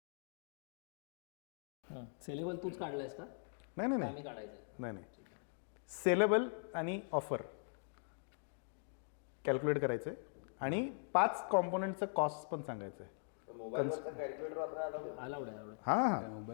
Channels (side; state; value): right; silent; digital silence